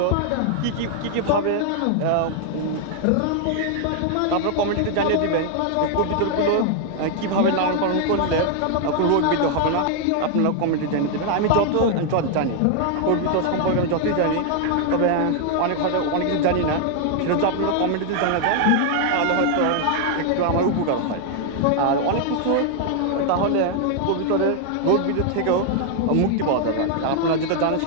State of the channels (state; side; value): different; both; correlation 0.00